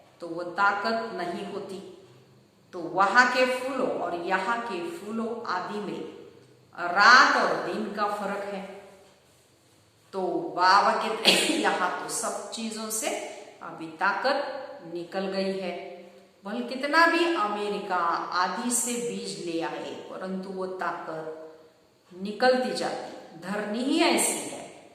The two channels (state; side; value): identical; both; correlation 1.00